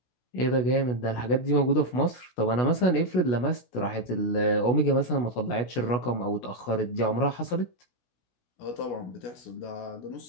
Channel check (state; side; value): late; right; 16 ms